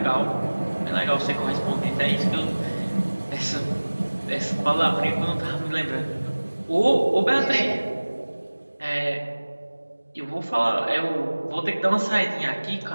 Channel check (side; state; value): both; inverted; correlation -1.00